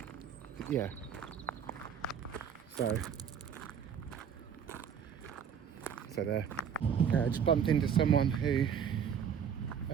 Yeah. So there. I just bumped into someone who, I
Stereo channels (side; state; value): left; quieter; 7.7 dB